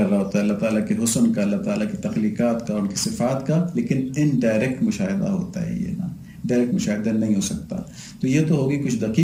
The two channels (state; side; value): identical; both; correlation 1.00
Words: رہا ہوتا ہے اللہ تعالیٰ کے حسن کا، اللہ تعالیٰ کی تخلیقات کا، ان کی صفات کا، لیکن ان ڈائریکٹ مشاہدہ ہوتا ہے، یہ نا ڈائریکٹ مشاہدہ نہیں ہو سکتا. تو یہ تو ہوگی کچھ